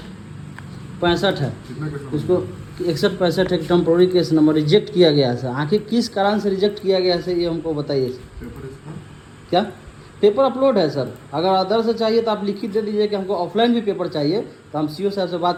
है। उसको 6165 है, टेम्पोररी केस नंबर रिजेक्ट किया गया है सर। आखिर किस कारण से रिजेक्ट किया गया है सर, ये हमको बताइए सर। क्या पेपर अपलोड है सर? अगर अदर से चाहिए तो आप लिखित दे दीजिए कि हमको ऑफलाइन भी पेपर चाहिए, तो हम सीओ साहब से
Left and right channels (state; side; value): identical; both; correlation 1.00